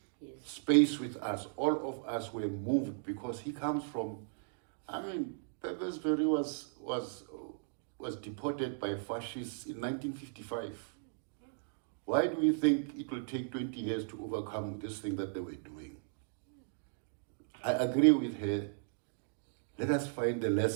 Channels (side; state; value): left; silent; digital silence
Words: space with us, all of us were moved, because he comes from, Perversberry was deported by fascists in 1955. Why do we think it will take 20 years to overcome this thing that they were doing? I agree with her. Let us find the